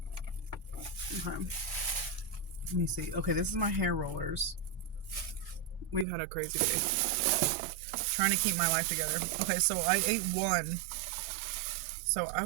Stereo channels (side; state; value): left; drops out; at 6.1 s